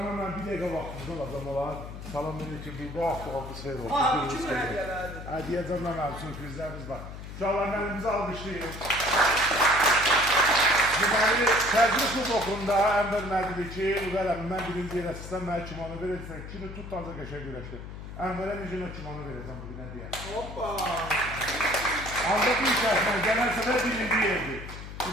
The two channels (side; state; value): left; noise; hum, 11 dB below the sound